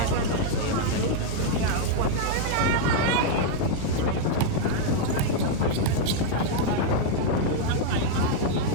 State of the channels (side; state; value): both; different; correlation 0.00